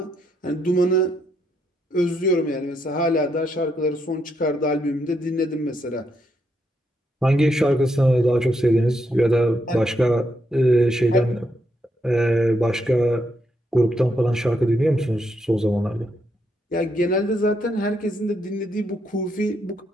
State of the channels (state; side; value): normal; both; correlation 0.78